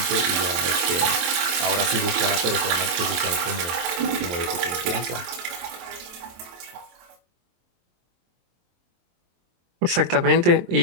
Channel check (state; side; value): late; left; 23 ms